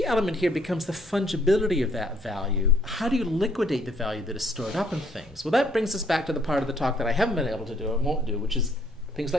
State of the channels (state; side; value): normal; both; correlation 0.65